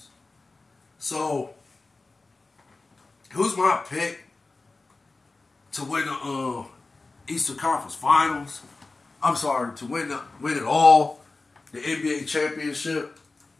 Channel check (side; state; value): right; quieter; 3.5 dB